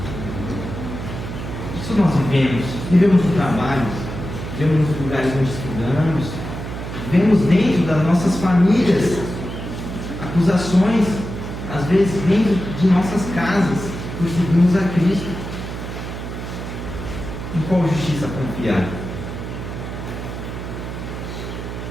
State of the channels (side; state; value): right; noise; hum, 7 dB below the sound